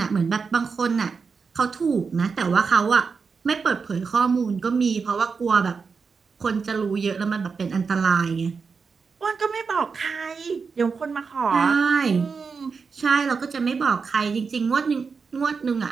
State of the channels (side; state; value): left; quieter; 5.2 dB